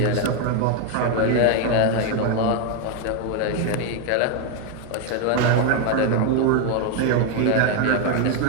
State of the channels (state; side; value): different; both; correlation 0.01